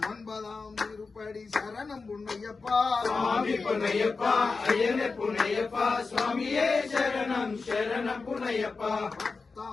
ஒன்பதாம் திருப்படி சரணம் பொன்னையப்பா சுவாமி பொன்னையப்பா ஐயனை பொன்னையப்பா சுவாமியே சரணம் சரண பொன்னையப்பா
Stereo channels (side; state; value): right; quieter; 4.3 dB